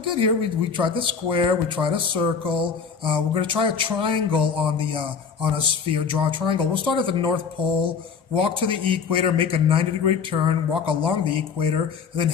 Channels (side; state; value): right; quieter; 6.0 dB